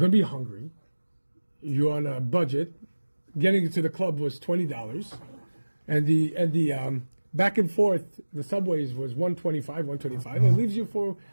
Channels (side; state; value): both; inverted; correlation -1.00